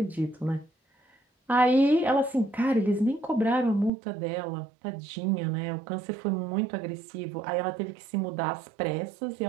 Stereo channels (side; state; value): left; drops out; at 3.9 s